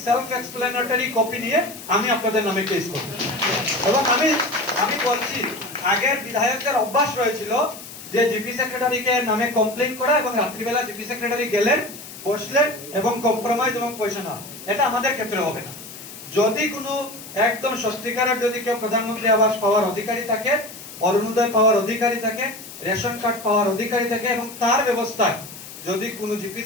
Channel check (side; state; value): left; noise; hiss, 14 dB below the sound